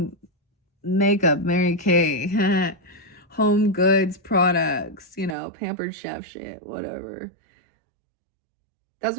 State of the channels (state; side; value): drops out; left; at 5.4 s